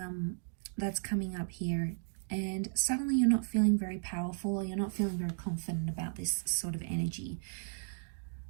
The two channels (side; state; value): left; silent; digital silence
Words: that's coming up here, and suddenly you're not feeling very powerful, or you're not feeling very confident about this sort of energy.